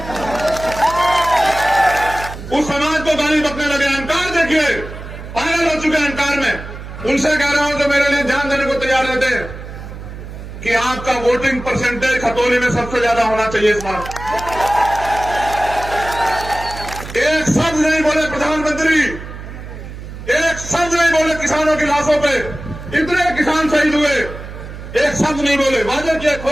उस समाज को गाली बकने लगे। अहंकार देखिए, पागल हो चुके हैं अहंकार में। उनसे कह रहा हूं जो मेरे लिए जान देने को तैयार रहते हैं कि आपका वोटिंग परसेंटेज खतौली में सबसे ज्यादा होना चाहिए इस बार। एक शब्द नहीं बोले प्रधानमंत्री, एक शब्द नहीं बोले किसानों की लाशों पे। इतने किसान शहीद हुए, एक शब्द नहीं बोले। वादे किए,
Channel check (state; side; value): noise; right; hum, 12 dB below the sound